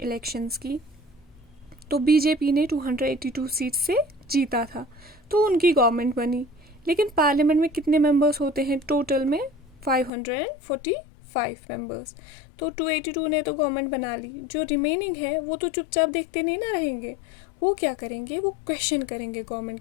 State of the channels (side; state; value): right; drops out; at 10.1 s